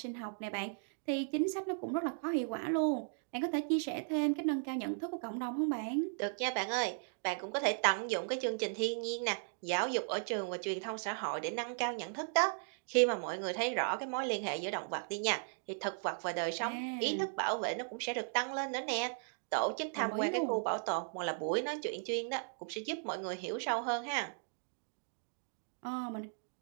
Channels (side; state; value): left; silent; digital silence